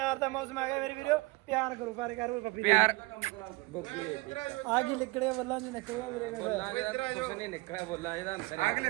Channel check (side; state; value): left; quieter; 24.4 dB